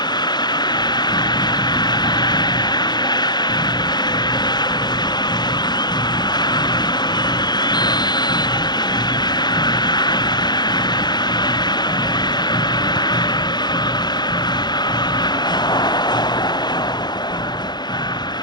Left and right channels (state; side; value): late; right; 0.21 ms